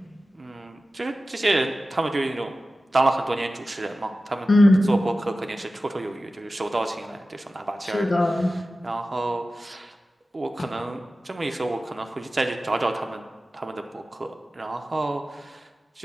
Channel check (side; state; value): both; normal; correlation 0.95